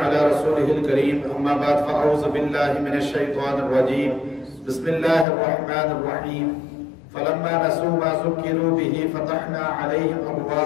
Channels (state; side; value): drops out; right; at 5.2 s